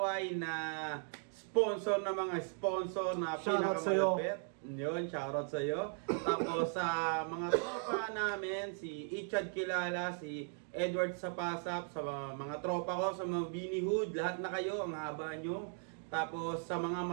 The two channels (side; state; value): left; silent; 53 dB below the other